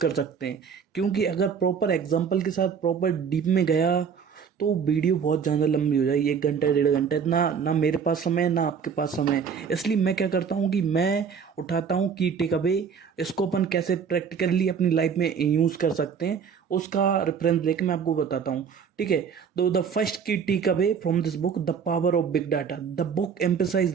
सकते हैं। क्योंकि अगर प्रॉपर एग्जाम्पल के साथ प्रॉपर डीप में गया तो वीडियो बहुत ज़्यादा लंबी हो जाएगी, 1 घंटा 1.5 घंटा। ना ना मेरे पास समय है, ना आपके पास समय है। इसलिए मैं क्या करता हूँ कि मैं उठाता हूँ कि टेक अवे, इसको अपन कैसे प्रैक्टिकली अपनी लाइफ में यूज़ कर सकते हैं, उसका रेफरेंस लेके मैं आपको बताता हूँ। ठीक है। तो the first key take away from this book, the power of big data. The book emphasize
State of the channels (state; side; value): quieter; left; 6.6 dB